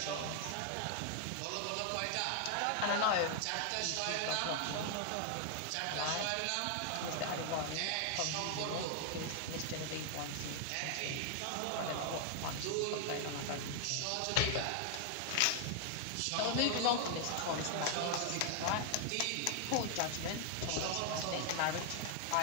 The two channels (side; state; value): both; different; correlation 0.00